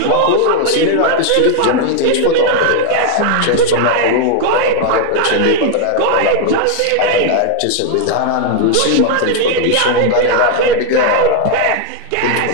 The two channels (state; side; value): different; both; correlation 0.00